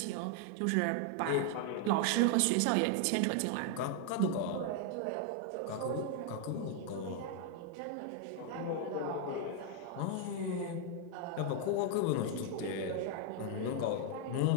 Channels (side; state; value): both; different; correlation 0.00